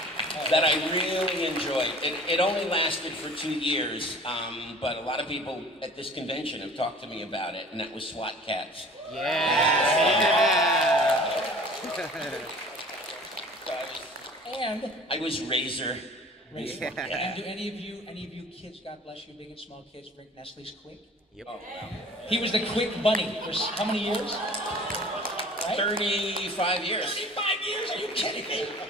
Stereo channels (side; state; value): both; normal; correlation 0.46